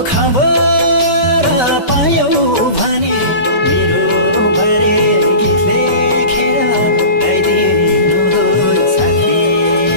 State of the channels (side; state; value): right; late; 5.2 ms